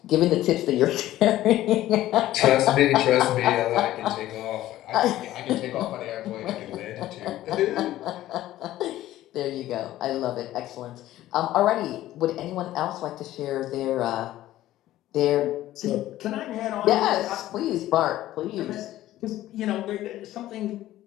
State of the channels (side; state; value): right; quieter; 14.5 dB